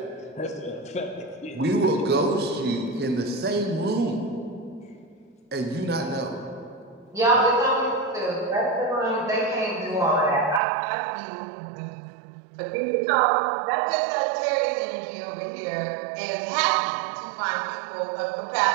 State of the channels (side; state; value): left; drops out; at 10.6 s